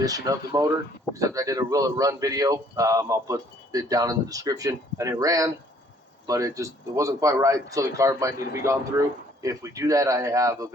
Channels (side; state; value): both; normal; correlation 0.60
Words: of the motor, except I did a Will It Run video. I'll put it down in the description, and it ran, but it wasn't quite right, so the carb might need to be gone through. If we do that, I have a